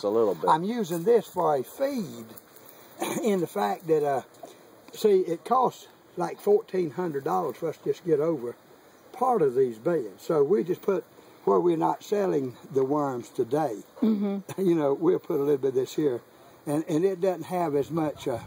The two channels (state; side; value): identical; both; correlation 1.00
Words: a little bit. I'm using this for a feed in the fact that, see, it costs like $1,400 for us to just get over part of these beds. So we just put, where we're not selling the worms today, you know, we'll put a little bit of this here. And it doesn't have as much